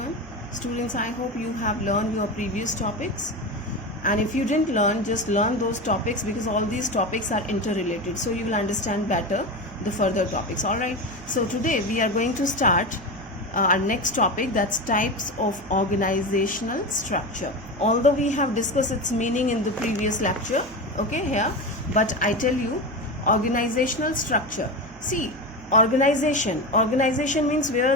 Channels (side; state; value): right; noise; hum, 21 dB below the sound